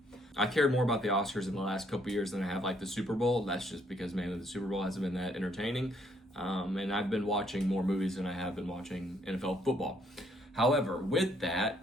I cared more about the Oscars in the last couple years than I have like the Super Bowl. That's just because mainly the Super Bowl hasn't been that entertaining. And I've been watching more movies than I have been watching NFL football. However, with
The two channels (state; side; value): normal; both; correlation 0.69